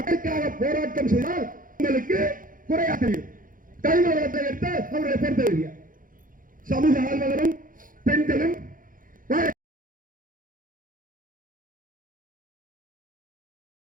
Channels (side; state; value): left; late; 0.40 ms